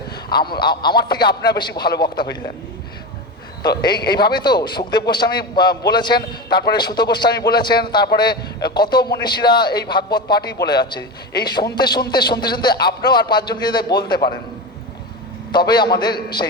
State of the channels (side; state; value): both; normal; correlation 0.21